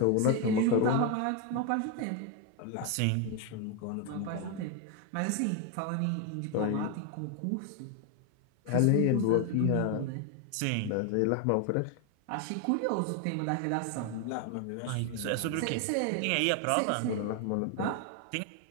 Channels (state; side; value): different; both; correlation 0.01